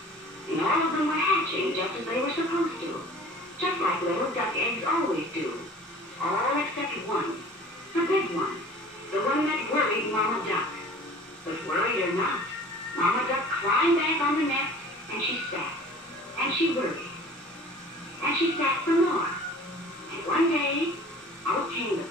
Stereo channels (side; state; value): both; normal; correlation 0.45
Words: and all of them were hatching just as they were supposed to, just like little duck eggs always do, all except one, the big one, the one that worried Mama Duck. But worried or not, Mama Duck climbed back on the nest, and she sat, and she worried, and she sat some more. And one day, out came the